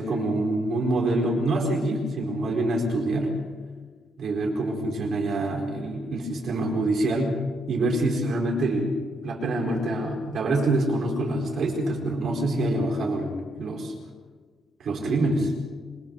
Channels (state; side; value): normal; both; correlation 0.76